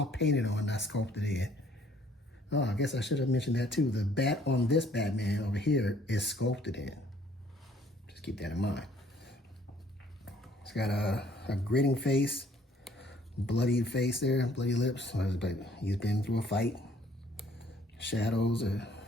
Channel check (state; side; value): normal; both; correlation 0.60